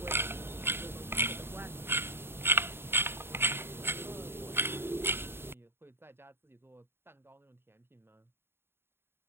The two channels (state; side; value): late; left; 0.11 ms